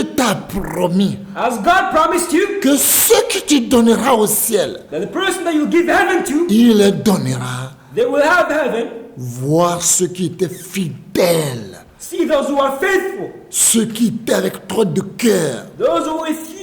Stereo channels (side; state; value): both; identical; correlation 1.00